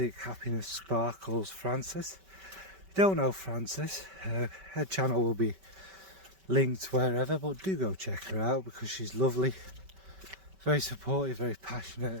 Happiness Sparkles Frances. If you don't know Frances, her channel will be linked wherever, but do go check her out because she's lovely, very supportive, very passionate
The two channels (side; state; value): left; late; 5.2 ms